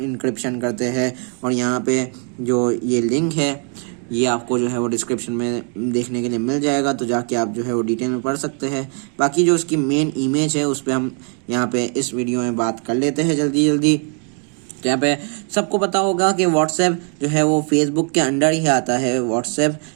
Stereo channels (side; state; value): left; quieter; 39.9 dB